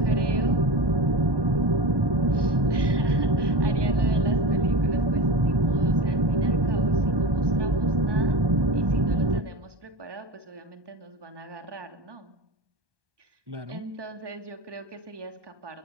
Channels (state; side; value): late; left; 1.2 ms